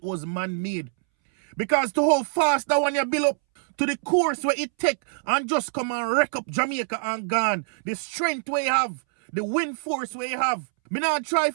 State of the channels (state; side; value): silent; left; 62 dB below the other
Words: was man-made. Because to how fast that one you build up, to the course where it take and just come and wreck up Jamaica and gone. The strength we have, the wind force we have. Me not try